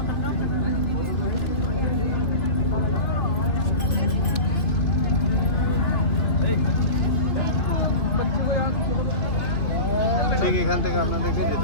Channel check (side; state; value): right; late; 3.1 ms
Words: ঠিক এখান থেকে আপনাদেরকে